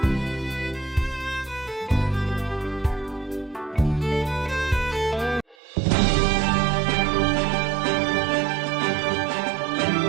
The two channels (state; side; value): drops out; left; at 5.6 s